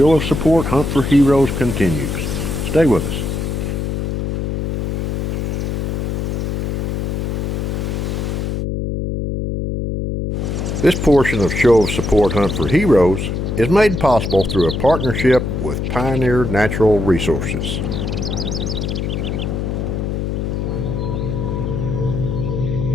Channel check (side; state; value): left; noise; hum, 2 dB below the sound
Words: of Support Hunt for Heroes continues. Stay with us. This portion of Show of Support Hunt for Heroes is made possible through a partnership with Pioneer Natural Resources.